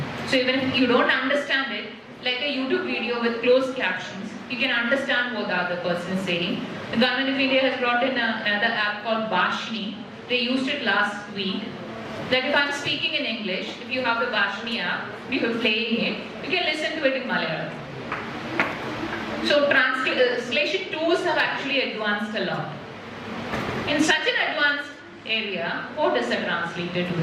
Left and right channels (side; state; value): both; identical; correlation 1.00